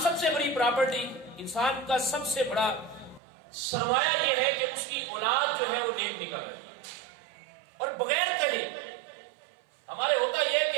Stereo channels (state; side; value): drops out; left; at 3.2 s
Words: سب سے بڑی پراپرٹی، انسان کا سب سے بڑا سرمایہ یہ ہے کہ اس کی اولاد جو ہے وہ نیک نکل آئے اور بغیر کہے. ہمارے ہوتا یہ ہے